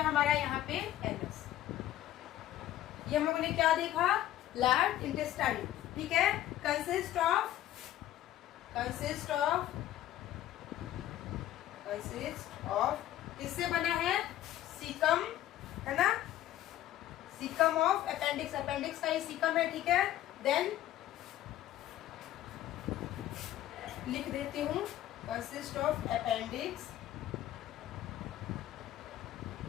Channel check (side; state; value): right; quieter; 13.2 dB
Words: हमारा यहाँ पे एनस। ये हम लोगों ने क्या देखा, लार्ज इंटेस्टाइन। ठीक है, consist of, consist of, consist of, किससे बना है, सीकम, है ना, सीकम ऑफ अपेंडिक्स, अपेंडिक्स का ये सीकम है। ठीक है, देन लिख देती हूँ, consist of appendix,